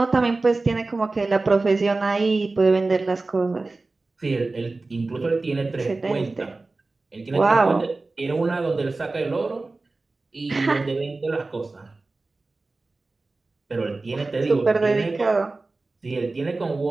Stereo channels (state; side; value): quieter; left; 3.4 dB